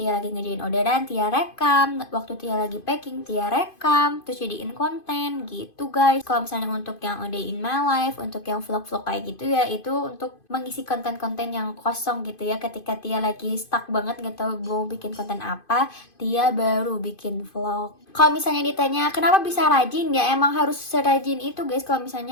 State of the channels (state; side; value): late; right; 2.5 ms